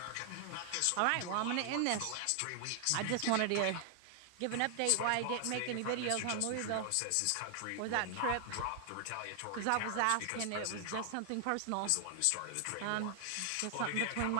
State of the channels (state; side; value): different; both; correlation 0.00